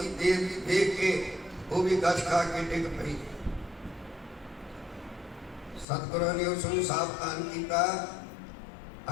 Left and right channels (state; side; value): drops out; right; at 5.9 s